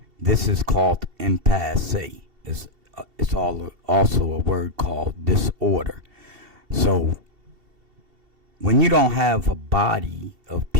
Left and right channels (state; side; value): late; left; 2.7 ms